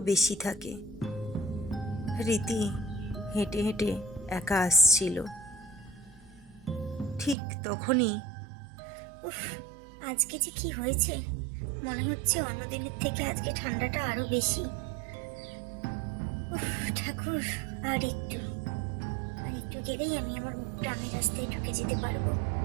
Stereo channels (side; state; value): left; drops out; at 7.4 s